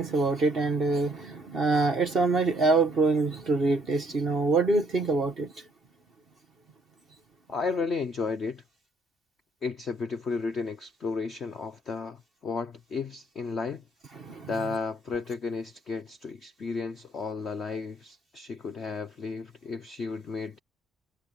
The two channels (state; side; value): normal; both; correlation 0.66